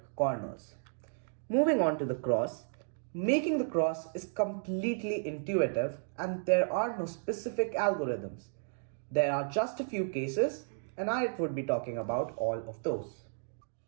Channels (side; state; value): left; silent; digital silence